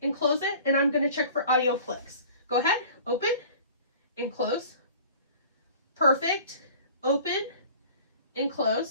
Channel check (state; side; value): inverted; both; correlation -0.45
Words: and close it, and I'm going to check for audio flicks. Go ahead, open and close. Perfect. Open and